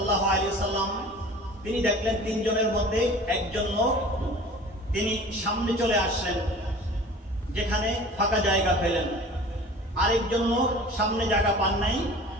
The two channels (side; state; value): both; normal; correlation 0.42